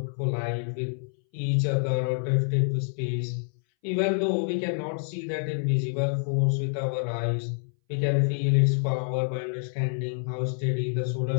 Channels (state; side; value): silent; right; 60 dB below the other